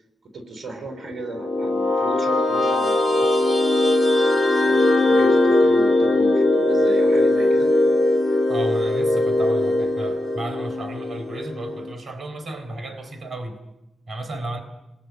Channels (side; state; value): both; normal; correlation 0.87